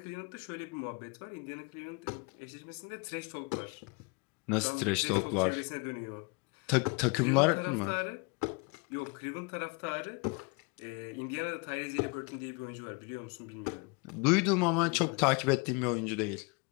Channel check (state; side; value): quieter; right; 30.3 dB